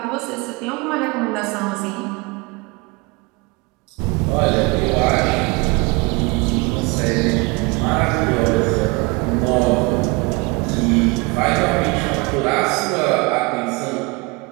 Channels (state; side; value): quieter; left; 26.8 dB